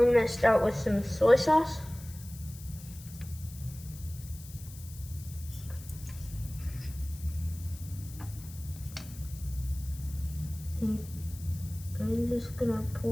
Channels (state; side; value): noise; left; hiss, 17 dB below the sound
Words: gonna start with some soy sauce. I'm just gonna